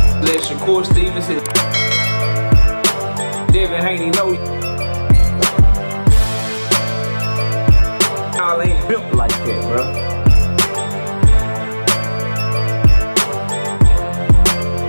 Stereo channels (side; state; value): both; inverted; correlation -1.00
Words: Let Shakur Stevenson. Devin Haney know y'all ain't built like that, bro.